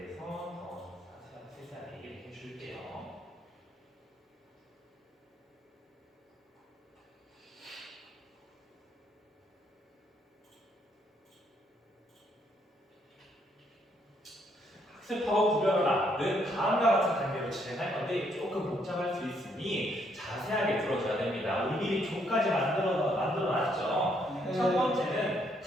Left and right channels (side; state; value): both; normal; correlation 0.71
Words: 더 세세하게 얘기를 해줄게요. 학습하고 구별하라는 다음과 같은 단계로 진행할 건데 조금 복잡할 수 있으니 자세하게 들어줘야 됩니다. 우리 미리 조까지 만들어놨죠. 네. 첫 번째는